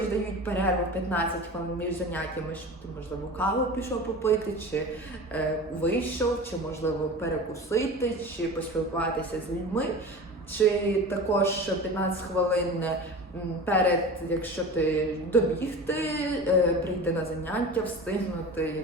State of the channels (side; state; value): both; normal; correlation 0.34